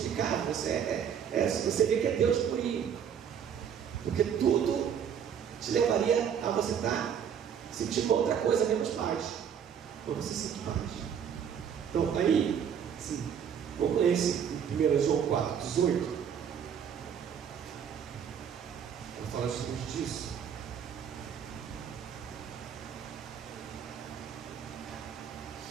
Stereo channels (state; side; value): quieter; left; 8.1 dB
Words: Você vê que é Deus purinho. Porque tudo te levaria a você estar sentindo outra coisa menos paz. Ou você sente paz. Então, aí, sim, vamos ler esse em 1 João 4:18. Fala justamente disso.